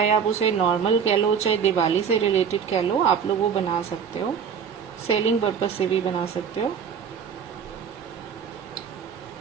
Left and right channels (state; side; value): quieter; left; 7.1 dB